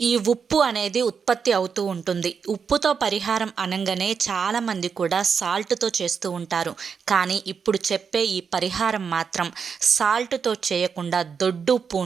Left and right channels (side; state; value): left; quieter; 6.2 dB